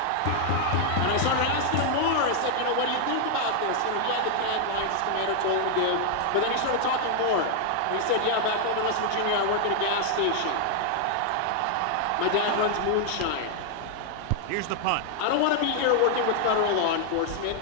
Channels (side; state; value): both; different; correlation 0.00